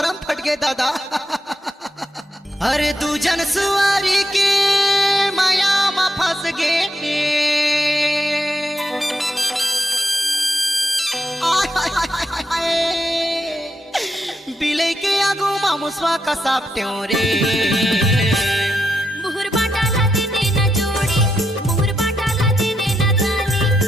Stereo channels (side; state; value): both; normal; correlation 0.81